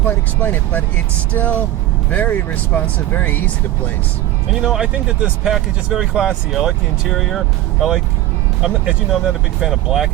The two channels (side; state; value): left; quieter; 14.4 dB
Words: explain it, but it's still very responsive, very easy to place. And you know, I think that this package is very classy. I like the interior. As you know, I'm not a big fan of